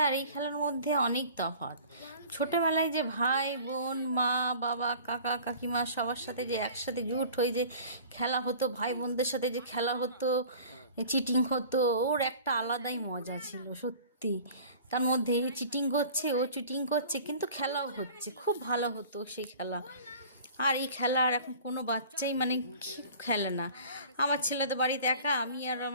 আর এই খেলার মধ্যে অনেক তফাৎ। ছোটোবেলায় যে ভাই বোন মা বাবা কাকা কাকিমা সবার সাথে যে একসাথে জুট হয়ে যে খেলা হতো, ভাই বোনদের সাথে যে খেলা হতো, চিটিং হতো, ওর একটা আলাদাই মজা ছিল সত্যি। তার মধ্যে চিটিং করছে, ও চিটিং করছে, কিন্তু খেলাও হচ্ছে, খুব ভালো হতো সেই খেলা। আর এই খেলা আর এখন কোনো বাচ্চাই মানে খেলে না। আমার ছেলে তো বাড়িতে একা, আমি আর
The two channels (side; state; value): both; inverted; correlation -0.45